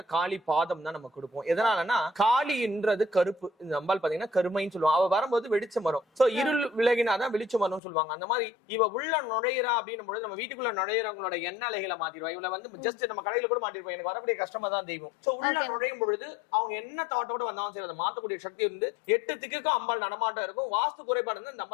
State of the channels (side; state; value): right; drops out; at 7.8 s